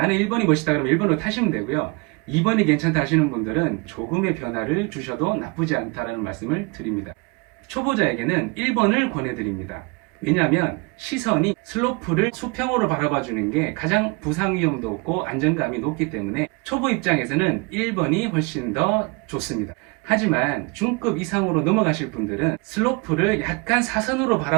1번이 멋있다 그러면 1번으로 타시면 되고요. 2번이 괜찮다 하시는 분들은 조금의 변화를 주셔도 나쁘지 않다라는 말씀을 드립니다. 초보자에게는 1번을 권해드립니다. 왜냐하면 시선이 슬로프를 수평으로 바라봐 주는 게 가장 부상 위험도 없고 안정감이 높기 때문에 초보 입장에서는 1번이 훨씬 더 좋습니다. 하지만 중급 이상으로 넘어가실 분들은 슬로프를 약간 사선으로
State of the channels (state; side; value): quieter; left; 29.1 dB